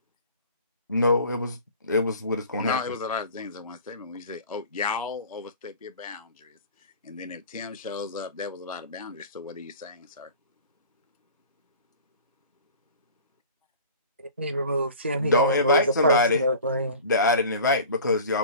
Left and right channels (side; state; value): both; inverted; correlation -0.41